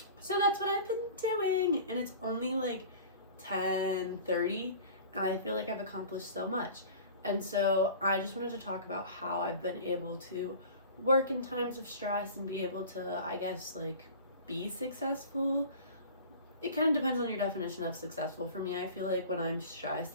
So that's what I've been doing, and it's only 10:30, and I feel I've accomplished so much. And so I just wanted to talk about how I've been able to work in times of stress and be able to, I guess, be successful. It kind of depends on your definition of successful. For me, I feel when I'm stressed,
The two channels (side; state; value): both; inverted; correlation -0.40